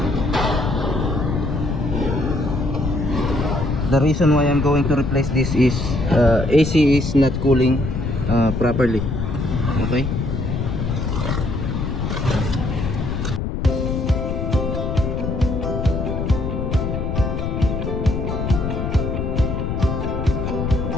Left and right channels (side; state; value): left; noise; rumble, 2 dB below the sound